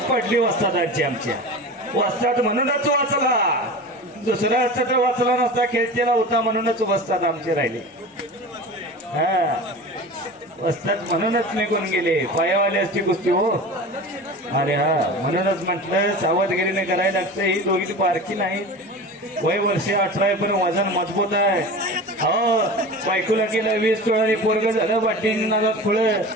पडली वस्तादांची आमच्या. वस्ताद म्हणूनच वाचला. दुसरा असता तर वाचला नसता. खेळतेला होता म्हणूनच वस्ताद आमचे राहिले. हा वस्ताद म्हणूनच निघून गेले. पायावाले असती कुस्ती हो. अरे हा म्हणूनच म्हटलं सावधगिरीने करायला लागतं. ही दोघी पारखी नाही. वय वर्ष 18 पण वजन मजबूत आहे. हो बायकोला गेलं 20 तोळांनी पोरग झालं. बाटीन नादात खुळं.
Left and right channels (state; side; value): normal; both; correlation 0.33